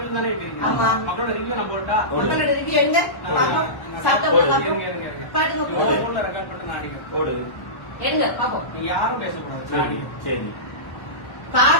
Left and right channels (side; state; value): right; late; 1.1 ms